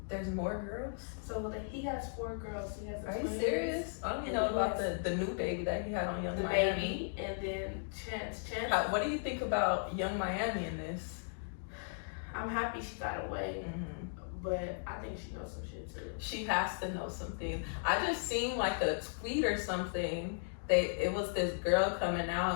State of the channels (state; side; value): silent; right; digital silence